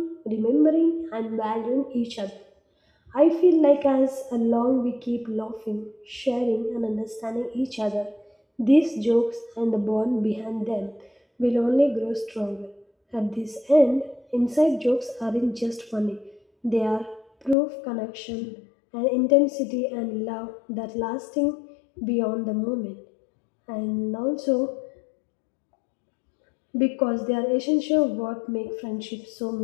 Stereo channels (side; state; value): right; drops out; at 17.6 s